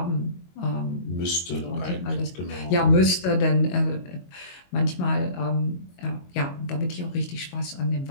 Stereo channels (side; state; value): right; late; 22 ms